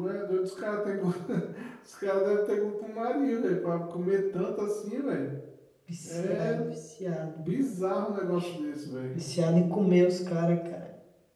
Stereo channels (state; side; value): identical; both; correlation 1.00